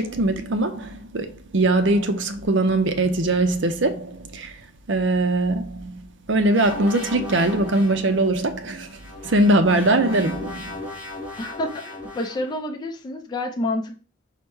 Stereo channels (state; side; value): normal; both; correlation 0.32